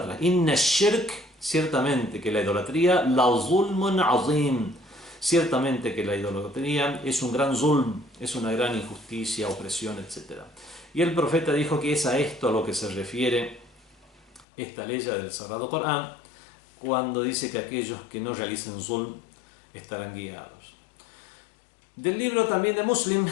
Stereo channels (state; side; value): drops out; right; at 14.5 s